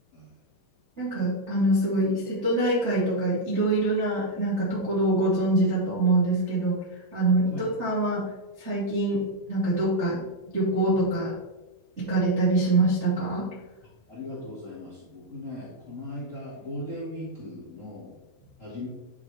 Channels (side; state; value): both; normal; correlation -0.01